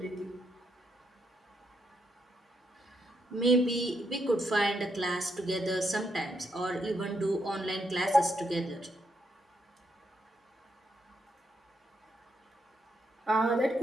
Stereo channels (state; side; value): normal; both; correlation 0.79